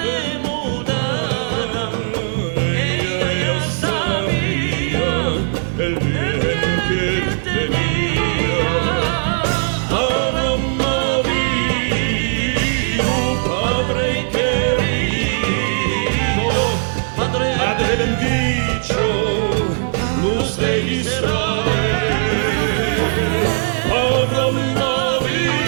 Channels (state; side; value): silent; left; 67 dB below the other